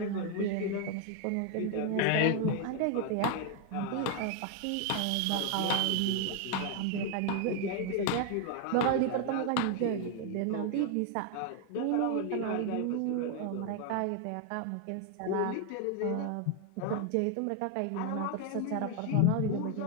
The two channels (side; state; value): both; different; correlation 0.01